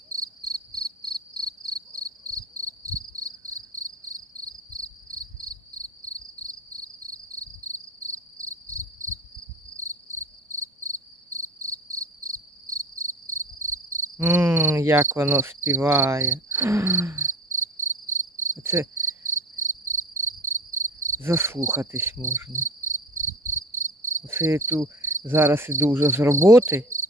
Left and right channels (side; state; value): both; normal; correlation 0.37